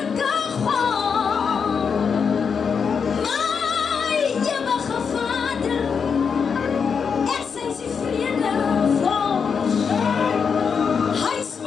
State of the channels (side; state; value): right; quieter; 6.2 dB